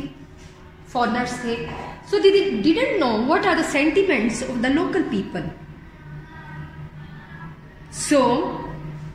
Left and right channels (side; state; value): both; identical; correlation 1.00